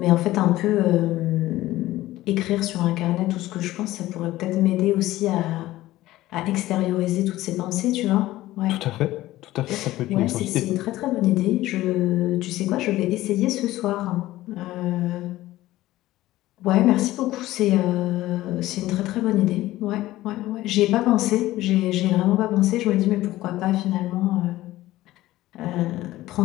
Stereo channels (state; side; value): quieter; right; 16.2 dB